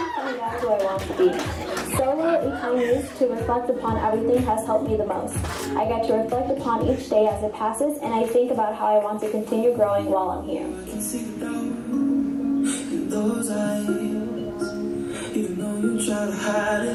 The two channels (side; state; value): both; identical; correlation 1.00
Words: find out who I want to be. Solo, a time used to reflect upon everything, has helped me the most. I get to reflect upon each day as it passes, and I think about how I want to continue growing while I'm here. Even though you try to hide